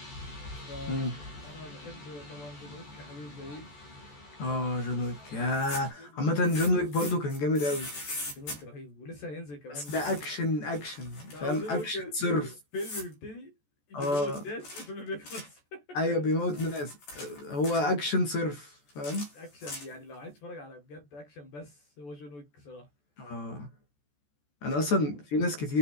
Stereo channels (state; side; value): late; right; 14 ms